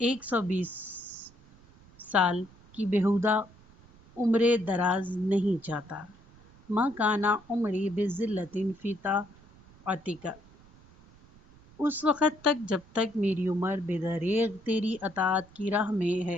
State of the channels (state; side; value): noise; right; rumble, 25 dB below the sound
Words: 120 سال کی بیہودہ عمر دراز نہیں چاہتا۔ ما کان عمری بذلۃ فی طاعتک، اس وقت تک جب تک میری عمر بے دریغ تیری اطاعت کی راہ میں